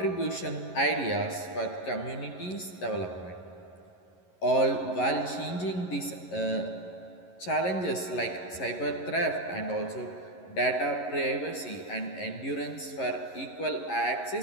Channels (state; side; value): late; right; 11 ms